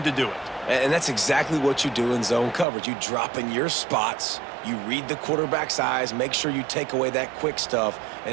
to do it. And that's exactly what you do in zone coverage. You drop in your spots, you read the quarterback's eyes, make sure you take away that quick stuff,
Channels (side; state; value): left; drops out; at 2.7 s